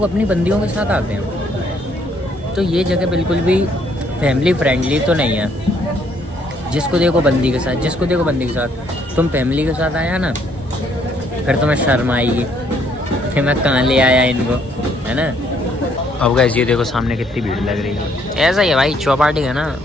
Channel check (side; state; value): both; normal; correlation 0.67